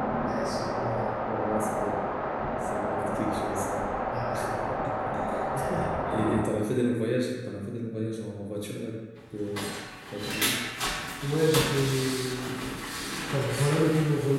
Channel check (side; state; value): both; identical; correlation 1.00